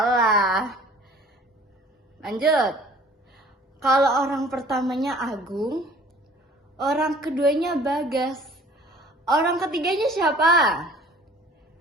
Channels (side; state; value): both; normal; correlation 0.51